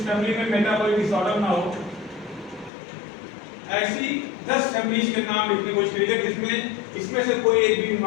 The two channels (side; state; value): right; drops out; at 2.7 s